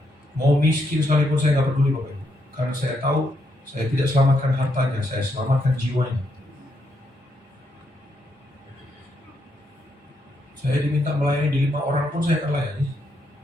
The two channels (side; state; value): both; normal; correlation 0.78